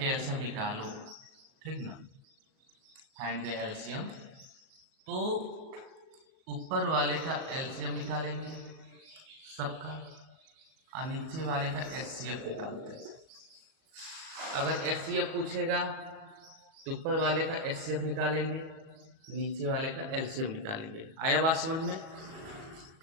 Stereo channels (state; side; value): late; left; 37 ms